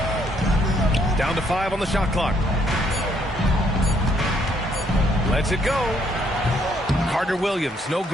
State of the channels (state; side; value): normal; both; correlation 0.69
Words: Down to 5 on the shot clock. Lets it go. Carter Williams, no